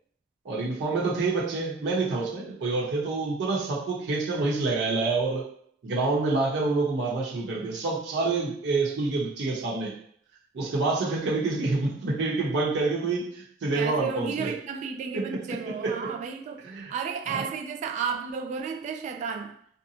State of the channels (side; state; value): left; quieter; 3.3 dB